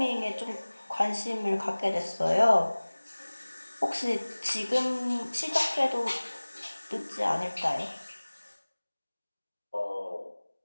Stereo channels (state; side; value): inverted; both; correlation -1.00